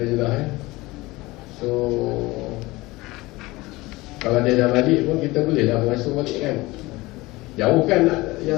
ya. So kalau dia dah balik pun kita boleh dah mengasuh balik kan. Jauh kan yang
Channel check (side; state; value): right; quieter; 20.9 dB